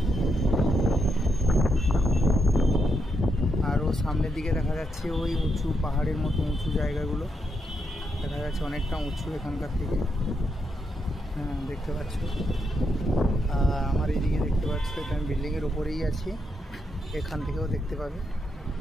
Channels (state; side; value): normal; both; correlation 0.81